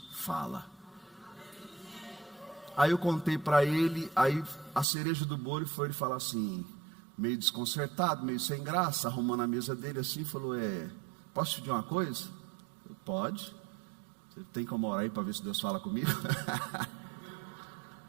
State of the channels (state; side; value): drops out; left; at 4.9 s